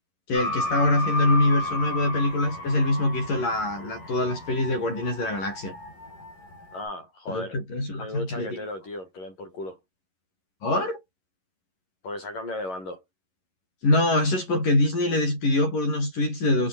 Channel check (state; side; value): late; right; 11 ms